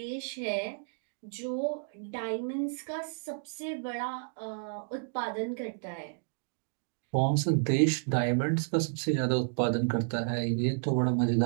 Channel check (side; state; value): left; silent; digital silence